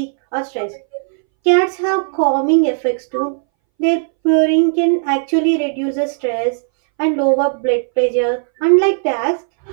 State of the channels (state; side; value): silent; left; 65 dB below the other